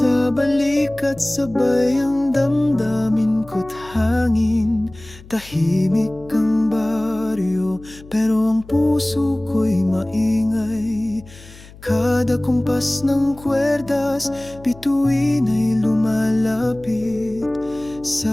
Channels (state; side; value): noise; left; hum, 20 dB below the sound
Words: balikat, sabay ang damdamin ko't hangin. Tahimik ang baryo, pero ang puso ko'y maingay. Kada kumpas ng kwerdas, bituin ay lumalapit.